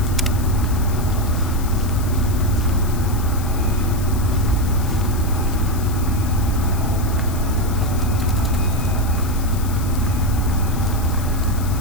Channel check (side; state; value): left; noise; hiss, 14 dB below the sound